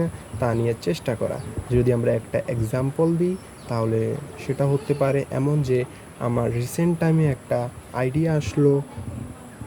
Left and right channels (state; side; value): identical; both; correlation 1.00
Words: না তা নিয়ে চেষ্টা করা। যদি আমরা একটা এক্সাম্পল দিই তাহলে সেটা হতে পারে এমন যে আমার রিসেন্ট টাইমে একটা আইডিয়া আসলো